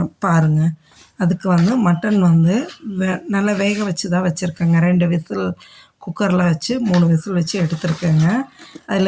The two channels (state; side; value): identical; both; correlation 1.00